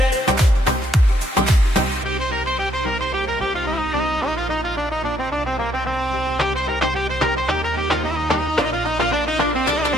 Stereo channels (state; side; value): normal; both; correlation 0.70